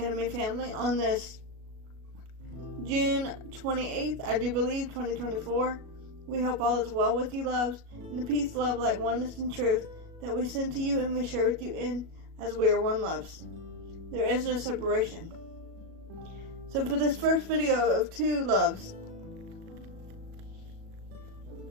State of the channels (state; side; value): late; left; 37 ms